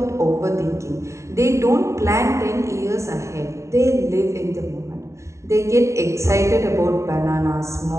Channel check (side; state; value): left; late; 0.14 ms